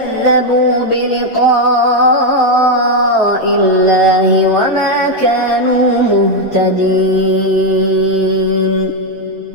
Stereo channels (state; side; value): normal; both; correlation 0.04